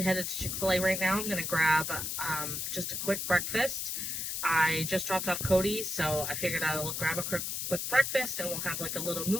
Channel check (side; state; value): left; noise; hiss, 3 dB below the sound